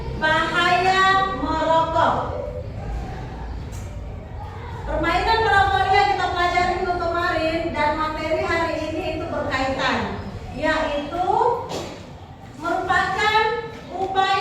bahaya merokok. Permainan merokok yang kita pelajari minggu kemarin dan materi hari ini itu berkaitan, yaitu merupakan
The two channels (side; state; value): both; identical; correlation 1.00